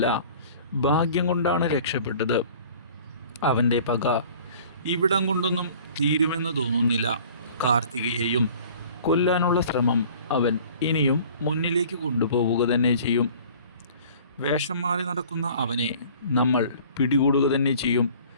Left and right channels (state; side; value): inverted; both; correlation -0.48